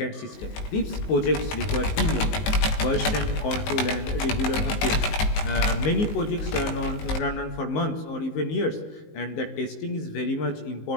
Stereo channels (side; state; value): right; late; 19 ms